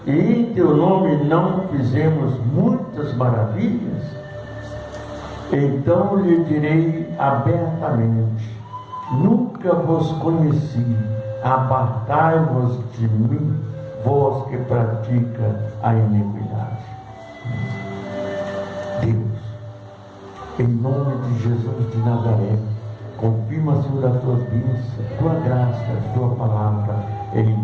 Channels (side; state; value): both; identical; correlation 1.00